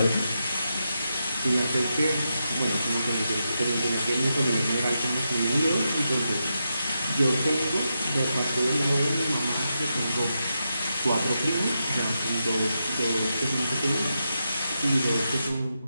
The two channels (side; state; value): both; inverted; correlation -0.86